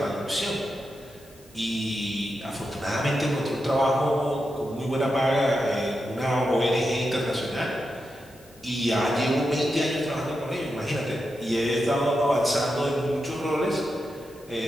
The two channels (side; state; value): both; normal; correlation 0.88